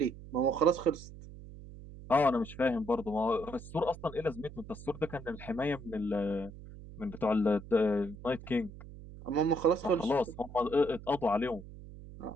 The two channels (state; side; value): noise; right; hum, 15 dB below the sound